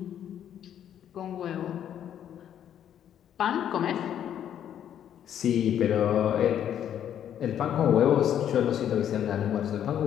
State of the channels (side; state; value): right; quieter; 9.9 dB